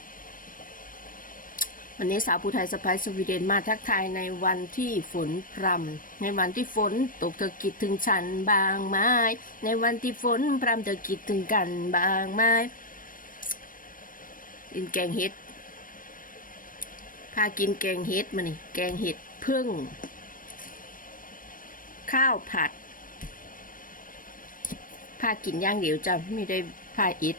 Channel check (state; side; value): late; right; 0.40 ms